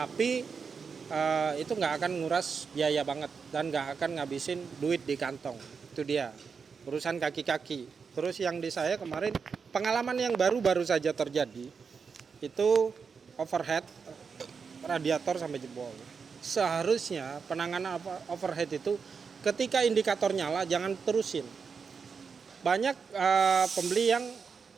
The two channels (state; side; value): quieter; left; 5.7 dB